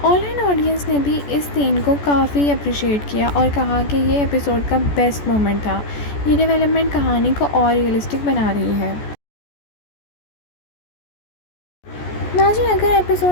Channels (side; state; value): right; late; 14 ms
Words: ऑनलाइन ऑडियंस ने भी इस सीन को काफ़ी अप्रिशिएट किया और कहा कि ये एपिसोड का बेस्ट मोमेंट था। ये डेवलपमेंट कहानी को और रियलिस्टिक बना रही है। नाज़रीन, अगर